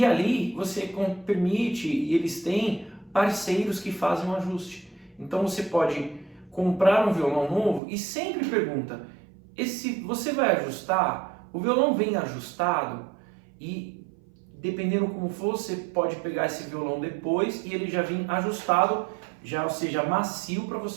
ali você permite, e eles têm parceiros que fazem um ajuste. Então você pode comprar um violão novo e sempre pergunta, você vai ajustar? O violão vem ajustado? E dependendo como for, você pode pegar esse violão depois e ele já vem ajustado, ou seja, macio para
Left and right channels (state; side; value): drops out; left; at 7.8 s